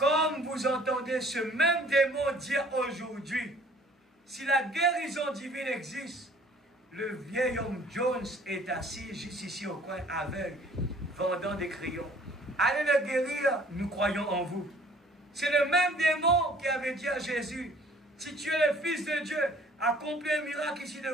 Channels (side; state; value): both; normal; correlation 0.55